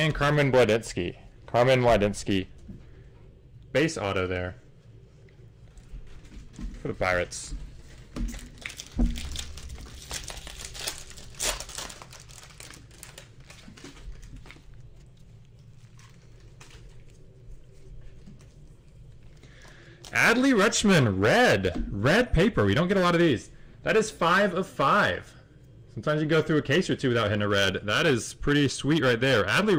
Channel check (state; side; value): identical; both; correlation 1.00